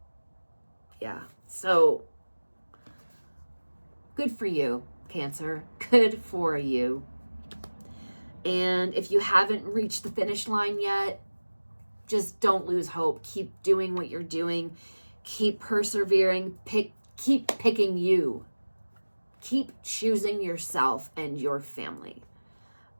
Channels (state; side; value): inverted; both; correlation -1.00